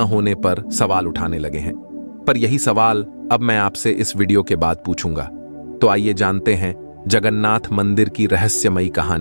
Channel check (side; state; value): both; inverted; correlation -1.00